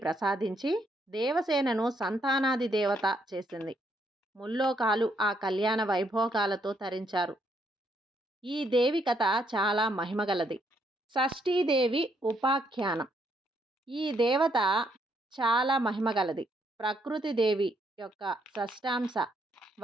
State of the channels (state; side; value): normal; both; correlation 0.73